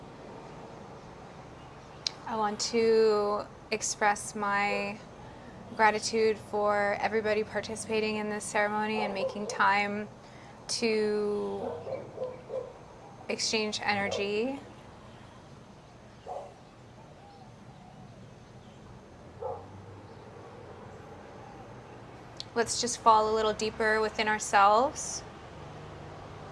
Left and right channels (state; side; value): identical; both; correlation 1.00